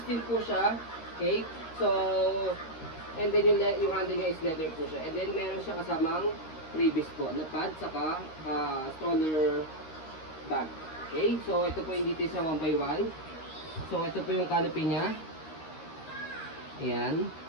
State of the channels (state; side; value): late; right; 13 ms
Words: din po siya. Okay, so and then yung handle niya is leather po siya. And then meron siya kasamang freebies po, na pad, saka stroller bag. Okay, so ito po yung details sa 1x1. So ito po yung canopy niya. Ayan.